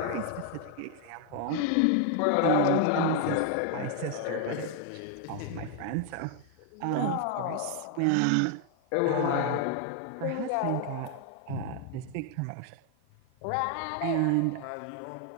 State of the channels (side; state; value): both; different; correlation 0.00